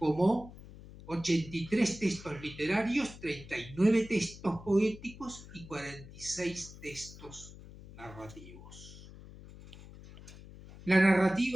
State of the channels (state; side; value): noise; left; hum, 17 dB below the sound